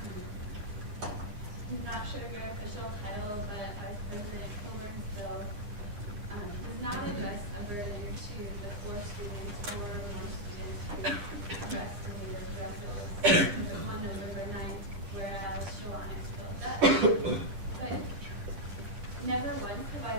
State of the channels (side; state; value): left; late; 9.7 ms